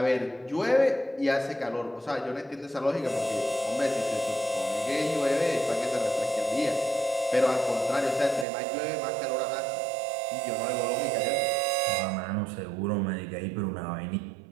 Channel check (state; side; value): drops out; left; at 8.5 s